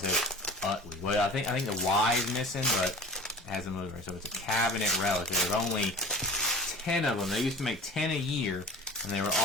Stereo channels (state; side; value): normal; both; correlation 0.39